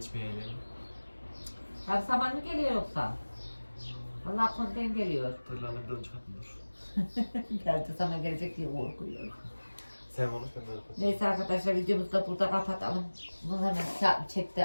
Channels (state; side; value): inverted; both; correlation -1.00